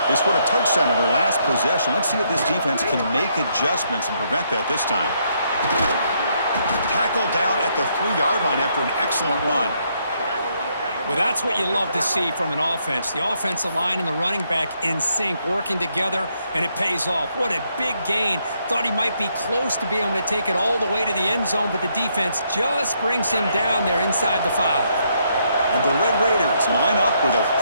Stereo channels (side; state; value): both; inverted; correlation -0.74